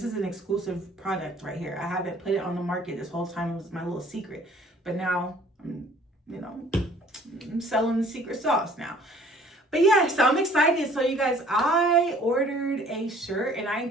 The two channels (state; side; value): normal; both; correlation 0.55